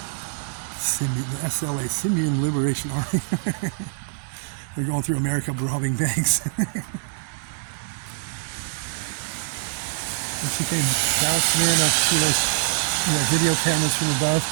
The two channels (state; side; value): silent; left; digital silence